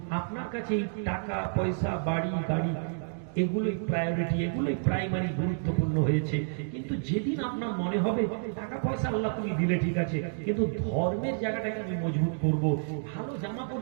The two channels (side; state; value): left; silent; digital silence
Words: আপনার কাছে এই টাকা পয়সা বাড়ি গাড়ি এগুলোই প্রায়োরিটি, এগুলোই প্রাইমারি গুরুত্বপূর্ণ হয়েছে। কিন্তু যেদিন আপনার মনে হবে টাকা পয়সা আল্লাহ তুমি দিলে ঠিক আছে, কিন্তু ধর্মের জায়গাটাকে আমি মজবুত করব। ভালো জামা